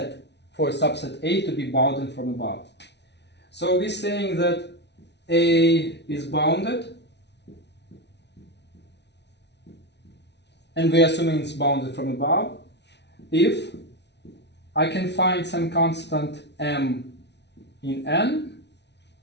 A to be bounded from above. So we're saying that A is bounded, and we're assuming it's bounded from above, if I can find some constant m in N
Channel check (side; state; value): right; late; 0.50 ms